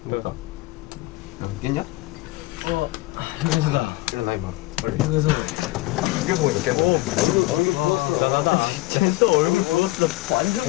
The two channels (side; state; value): right; quieter; 19.5 dB